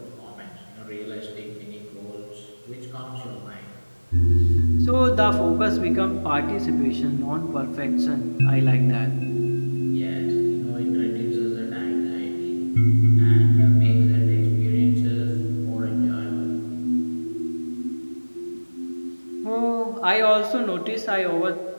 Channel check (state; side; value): inverted; both; correlation -1.00